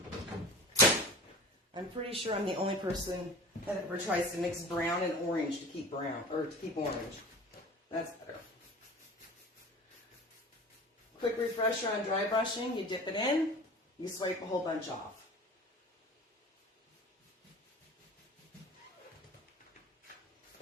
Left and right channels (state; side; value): normal; both; correlation 0.38